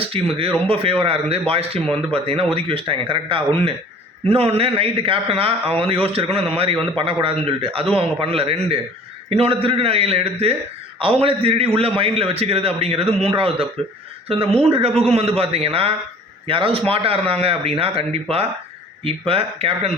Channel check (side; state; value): both; normal; correlation 0.48